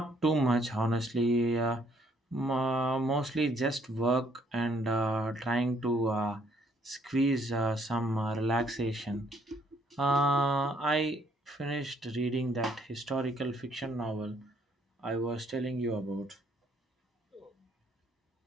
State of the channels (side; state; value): both; normal; correlation 0.67